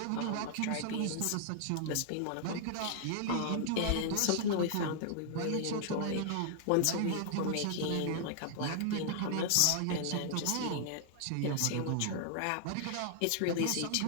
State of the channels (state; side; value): different; both; correlation -0.01